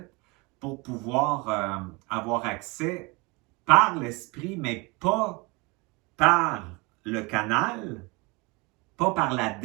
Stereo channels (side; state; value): left; quieter; 26.6 dB